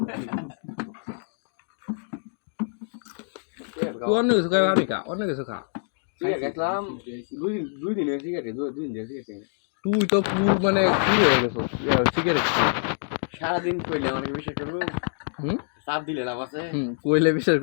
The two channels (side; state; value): right; silent; digital silence